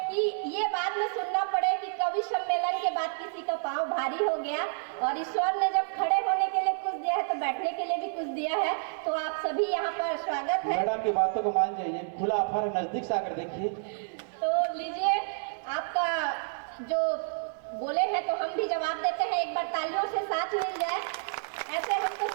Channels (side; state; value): left; silent; 58 dB below the other